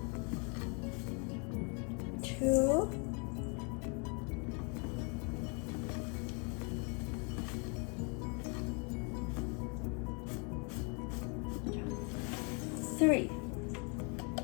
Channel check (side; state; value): right; quieter; 34.9 dB